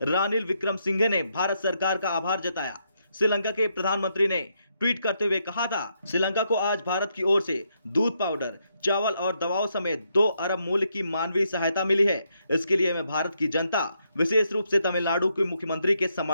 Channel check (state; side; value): inverted; both; correlation -0.78